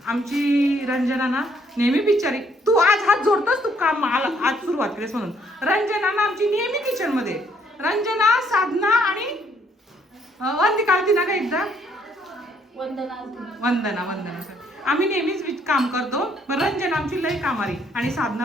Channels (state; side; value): normal; both; correlation 0.67